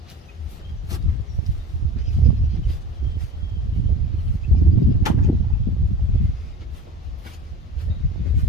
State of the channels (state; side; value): normal; both; correlation 0.35